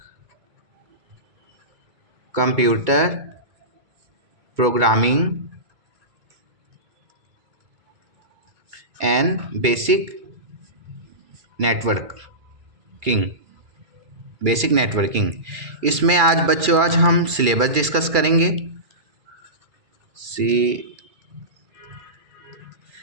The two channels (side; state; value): left; late; 2.4 ms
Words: Computer programming and basic networking. इसमें आज हम सिलेबस डिस्कस करेंगे।